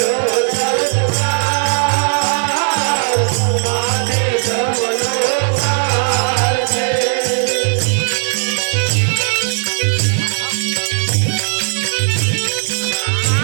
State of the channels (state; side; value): silent; left; 69 dB below the other